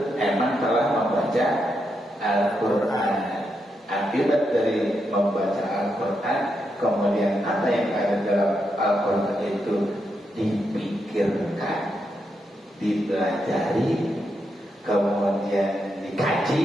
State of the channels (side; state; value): both; normal; correlation 0.83